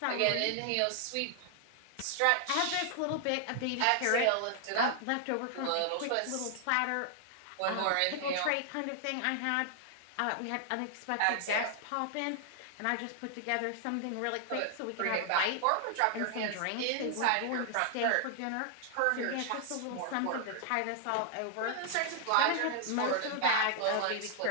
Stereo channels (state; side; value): different; both; correlation 0.00